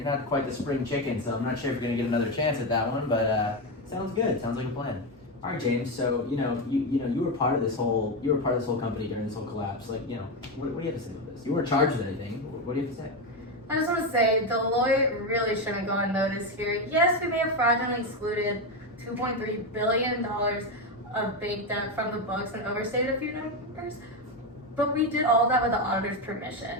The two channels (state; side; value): normal; both; correlation 0.11